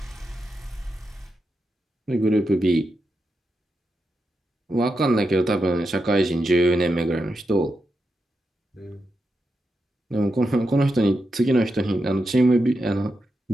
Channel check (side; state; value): both; normal; correlation 0.86